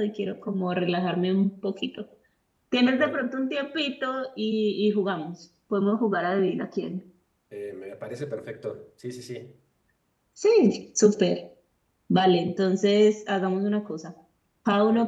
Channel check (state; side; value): identical; both; correlation 1.00